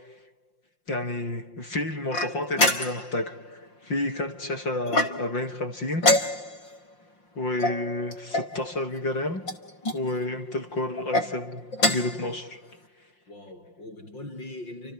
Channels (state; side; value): late; right; 5.7 ms